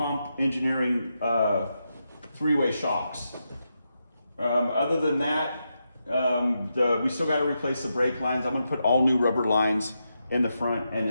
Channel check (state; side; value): inverted; both; correlation -0.85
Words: Engineering 3-way shocks. Other than that, we still got to replace the brake lines. I'm going to put all new rubber lines in the front and